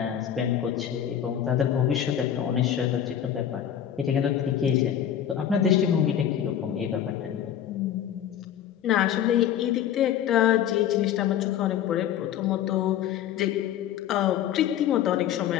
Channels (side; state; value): right; quieter; 10.1 dB